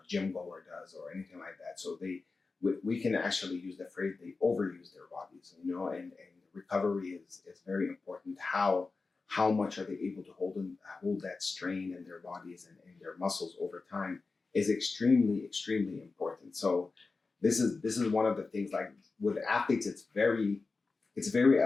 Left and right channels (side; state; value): right; quieter; 4.0 dB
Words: gym goer does or anything like that. So we can actually use the phrase they overuse their bodies, and recovery is very important. How much are they able to hold that strain in their bodies and their muscles over time is extremely, extremely important. So this is one of the things, like with athletes, it's a very